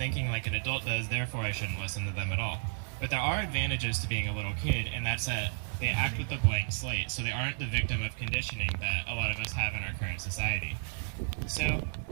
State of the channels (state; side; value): silent; left; digital silence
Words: like an adult does, therefore I shouldn't listen to them at all. But there are advantages to being a little kid, and that's that they act with a blank slate, so they aren't the victim of conditioning that a lot of us have in our current society. So